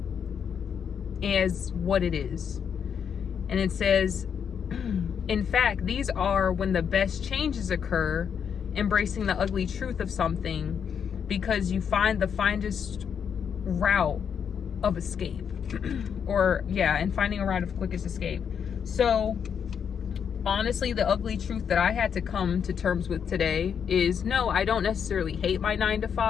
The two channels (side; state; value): right; quieter; 7.5 dB